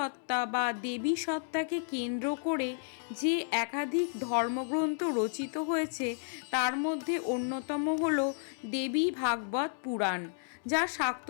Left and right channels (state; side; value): silent; right; digital silence